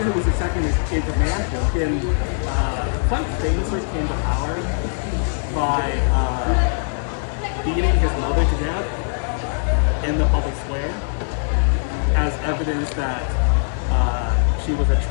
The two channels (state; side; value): silent; right; 65 dB below the other